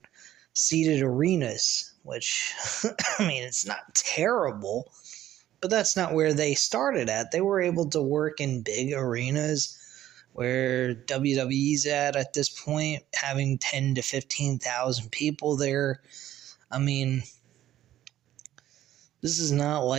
seated arenas, which, I mean, it's not terrible, but that's not where they started at. They were able to work in big arenas where WWE's at this point, having 10 to 15,000 people there. I mean, this is not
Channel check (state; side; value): quieter; left; 12.8 dB